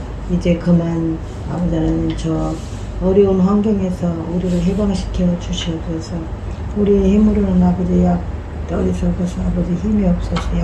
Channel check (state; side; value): identical; both; correlation 1.00